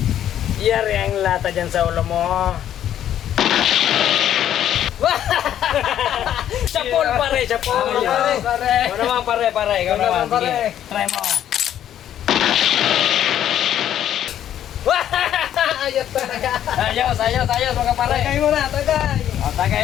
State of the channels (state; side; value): quieter; right; 10.8 dB